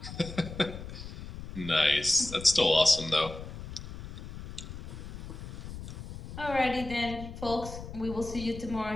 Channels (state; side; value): noise; left; rumble, 11 dB below the sound